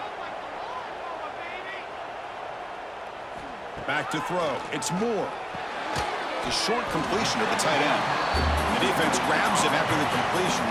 Back to throw. It's Moore. The short completion to the tight end. The defense grabs him after the completion.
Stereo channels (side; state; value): both; identical; correlation 1.00